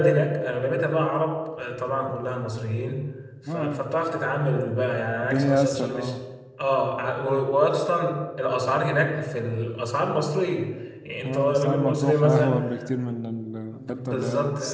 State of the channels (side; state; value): both; identical; correlation 1.00